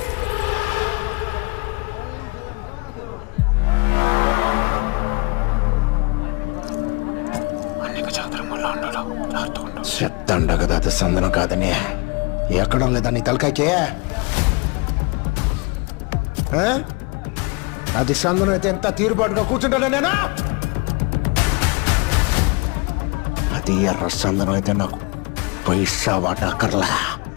చెప్తాండ కదా అది సందనం కాదని. ఎక్కడం లేదా నీ తలకాయకే? అది సందనం అయితే ఎంత తీరుబాటుగా కూర్చుంటాను నేను. అది ఎర్ర సందనం అయితే నాకు పైసా వాటా అక్కర్లా.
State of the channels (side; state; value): right; quieter; 29.3 dB